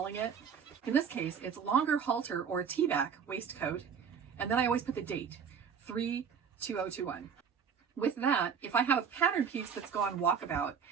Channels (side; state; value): left; quieter; 6.9 dB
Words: it. In this case, it's longer halter or T-back waistcoat. And then I always put the date, 3/2021. With that, if I have a pattern piece that's gone walkabout,